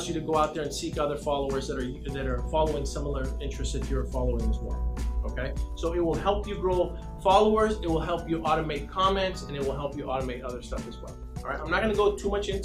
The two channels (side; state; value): both; identical; correlation 1.00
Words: you to go out there and seek other followers that are following similar interests that you're following as well. Okay, so it will help you grow followers, it will help you automate comments, and it will help you automate other stuff as well. All right, I'm not going to go too much